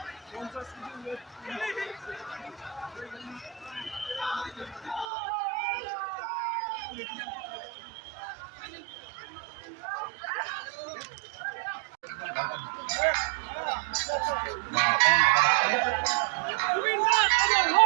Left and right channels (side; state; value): left; drops out; at 5.1 s